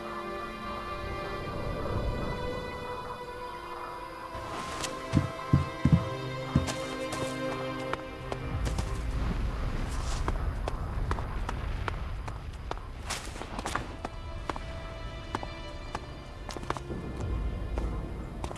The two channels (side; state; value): both; identical; correlation 1.00